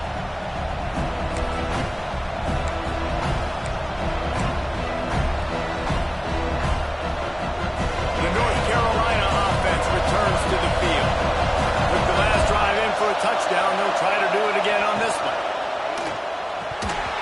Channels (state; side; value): identical; both; correlation 1.00